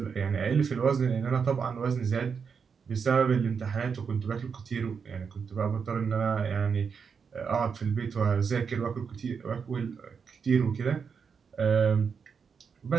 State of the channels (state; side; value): quieter; left; 6.1 dB